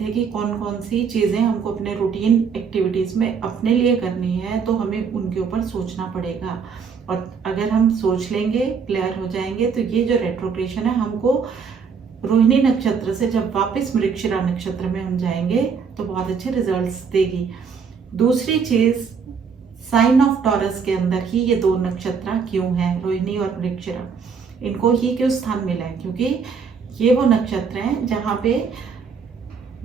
कि कौन कौन सी चीज़ें हमको अपने रूटीन एक्टिविटीज़ में अपने लिए करनी है, तो हमें उनके ऊपर सोचना पड़ेगा। और अगर हम सोच लेंगे, क्लियर हो जाएंगे, तो ये जो रेट्रोग्रेशन है हमको रोहिणी नक्षत्र से जब वापस मृगशिरा नक्षत्र में हम जाएंगे तो बहुत अच्छे रिजल्ट्स देगी। दूसरी चीज, साइन ऑफ टॉरस के अंदर ही ये दो नक्षत्र क्यों हैं, रोहिणी और मृगशिरा, इनको ही क्यों स्थान मिला है, क्योंकि ये वो नक्षत्र हैं जहाँ पे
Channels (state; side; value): quieter; left; 6.0 dB